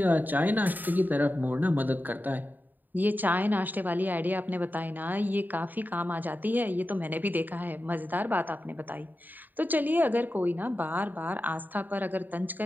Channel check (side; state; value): left; late; 0.088 ms